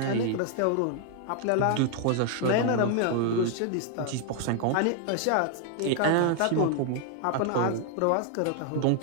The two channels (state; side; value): different; both; correlation 0.00